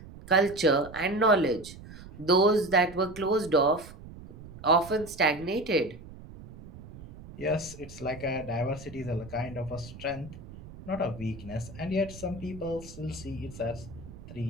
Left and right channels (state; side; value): noise; right; rumble, 16 dB below the sound